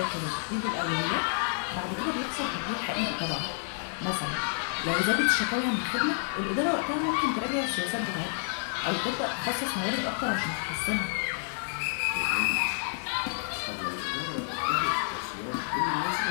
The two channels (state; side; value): silent; right; 58 dB below the other